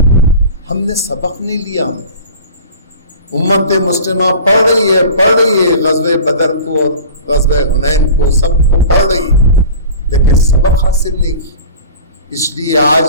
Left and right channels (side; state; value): both; inverted; correlation -0.38